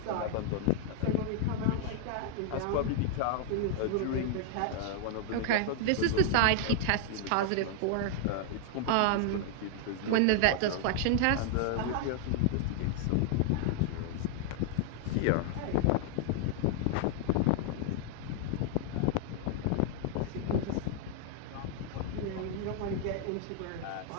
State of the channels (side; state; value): both; different; correlation 0.00